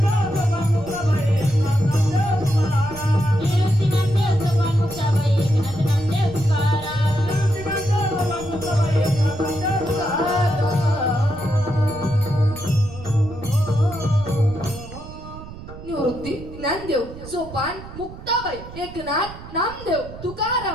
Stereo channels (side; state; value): right; noise; rumble, 14 dB below the sound